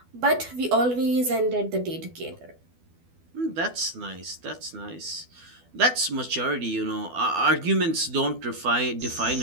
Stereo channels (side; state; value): left; late; 12 ms